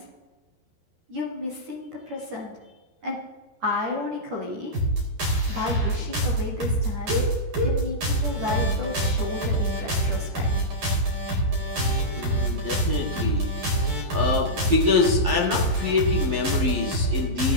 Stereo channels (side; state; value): left; late; 11 ms